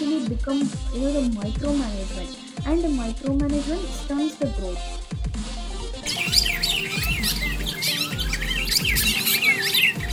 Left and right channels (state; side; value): identical; both; correlation 1.00